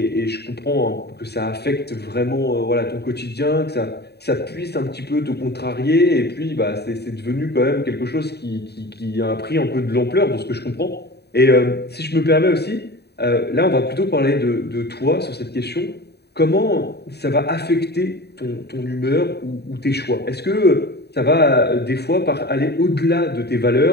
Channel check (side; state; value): right; late; 0.48 ms